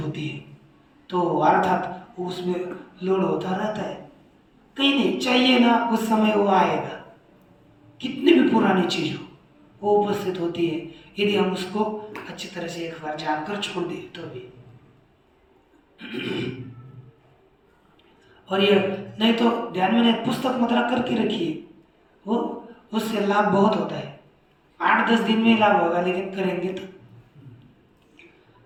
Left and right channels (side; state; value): both; identical; correlation 1.00